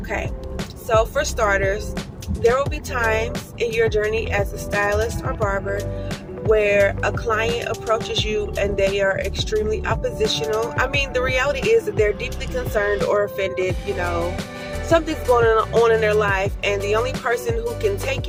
so for starters, there will be times in your journey as a stylist or barber where a client approaches you and they are extremely oppositional. I mean, the reality is that they're deeply concerned or offended, something's going on in their life, and the only person who can take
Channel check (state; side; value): identical; both; correlation 1.00